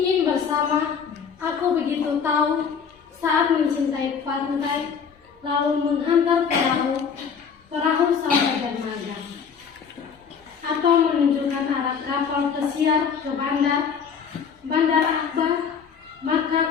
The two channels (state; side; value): quieter; right; 6.6 dB